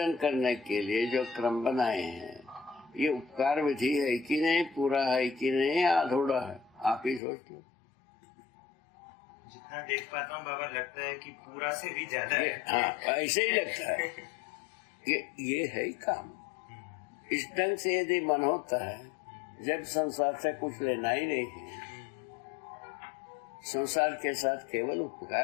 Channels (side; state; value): right; drops out; at 7.2 s